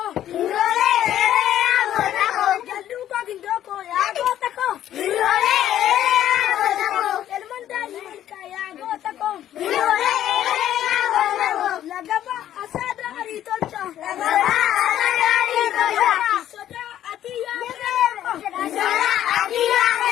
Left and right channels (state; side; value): quieter; right; 11.7 dB